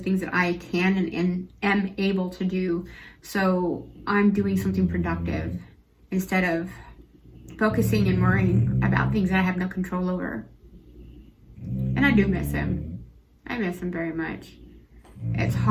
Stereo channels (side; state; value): both; identical; correlation 1.00